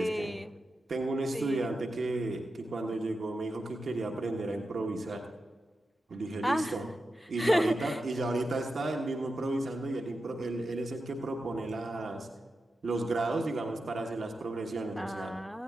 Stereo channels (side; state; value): both; normal; correlation 0.90